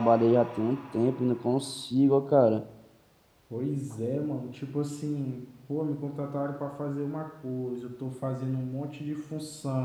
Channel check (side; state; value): both; identical; correlation 1.00